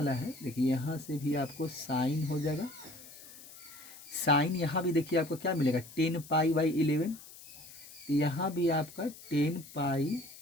है, देखिए यहाँ से भी आपको साइन हो जाएगा। साइन यहाँ भी देखिए आपको क्या मिलेगा, 10 पाई बाई 11। तो यहाँ भी आपका 10 पाई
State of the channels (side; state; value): left; noise; hiss, 18 dB below the sound